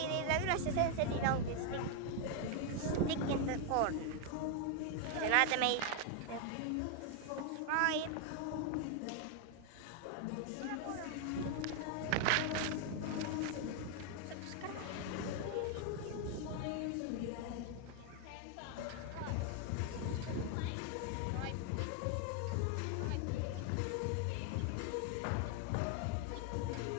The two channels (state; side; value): different; both; correlation 0.00